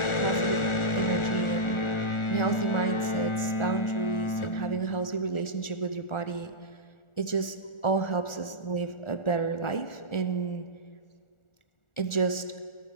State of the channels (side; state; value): right; late; 1.4 ms